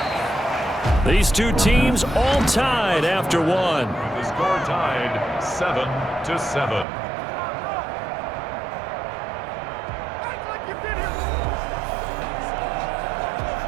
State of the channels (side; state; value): left; drops out; at 6.9 s